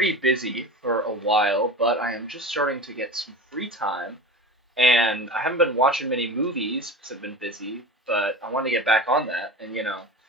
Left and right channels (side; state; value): both; normal; correlation 0.32